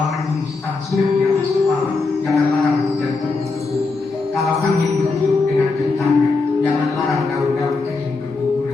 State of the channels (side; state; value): right; quieter; 4.0 dB